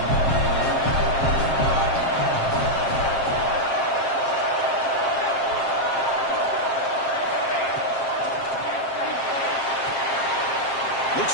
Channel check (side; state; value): right; late; 7.5 ms